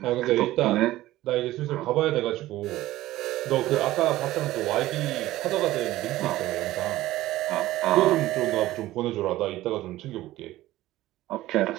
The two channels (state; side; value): quieter; left; 16.1 dB